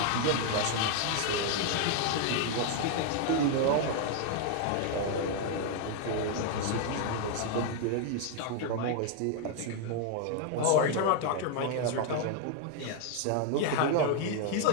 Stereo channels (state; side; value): different; both; correlation 0.00